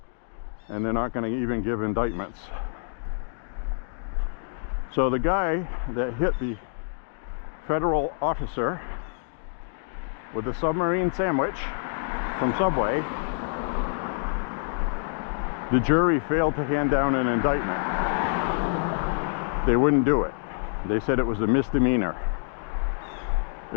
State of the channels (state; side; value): silent; right; digital silence